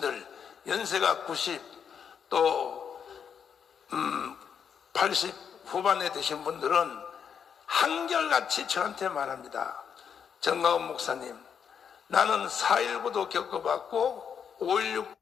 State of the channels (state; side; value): quieter; right; 7.4 dB